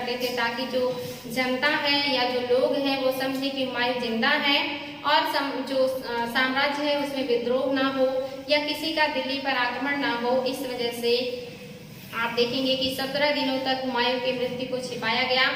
थे ताकि जो जनता है या जो लोग हैं वो समझे कि हुमायूं जिंदा है और जो साम्राज्य है उसमें विद्रोह ना हो या किसी का दिल्ली पर आक्रमण ना हो। इस वजह से आप देखेंगे कि 17 दिनों तक हुमायूं की मृत्यु को छिपाया गया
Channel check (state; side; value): identical; both; correlation 1.00